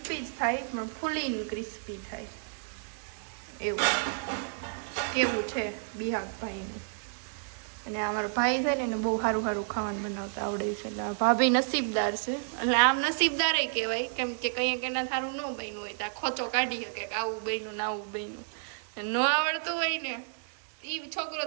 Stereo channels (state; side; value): silent; left; digital silence